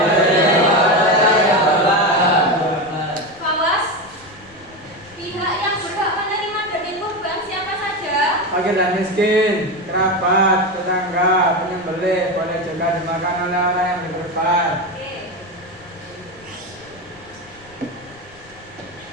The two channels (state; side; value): noise; left; rumble, 26 dB below the sound